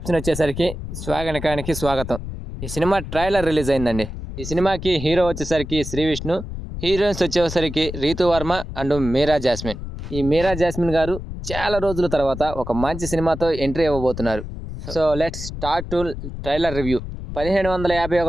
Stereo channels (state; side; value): noise; left; rumble, 8 dB below the sound